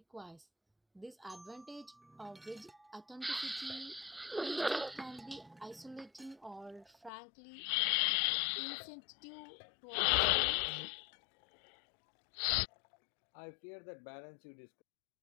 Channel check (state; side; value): drops out; right; at 7.1 s